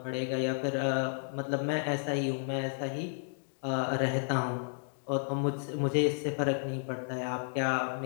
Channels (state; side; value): silent; right; digital silence